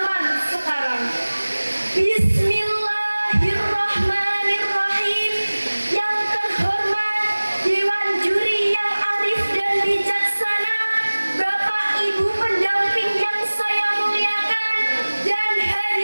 sekarang. Bismillahirrahmanirrahim. Yang terhormat Dewan Juri yang arif dan bijaksana, Bapak Ibu pendamping yang saya muliakan, dan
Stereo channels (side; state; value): both; inverted; correlation -1.00